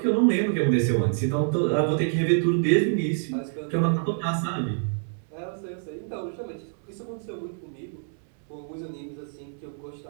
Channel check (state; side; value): silent; left; 60 dB below the other